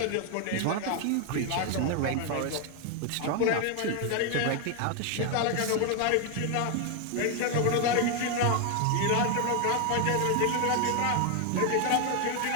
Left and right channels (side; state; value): both; different; correlation 0.01